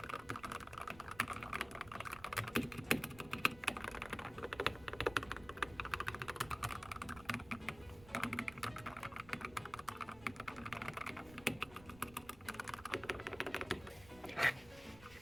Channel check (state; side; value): noise; right; rumble, 19 dB below the sound